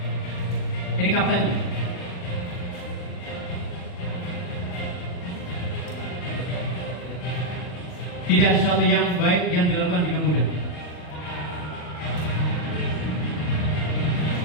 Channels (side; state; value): right; late; 40 ms